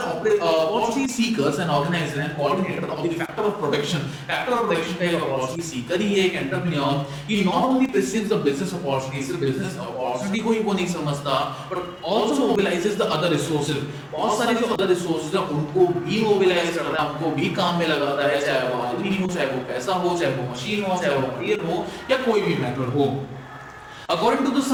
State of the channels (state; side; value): identical; both; correlation 1.00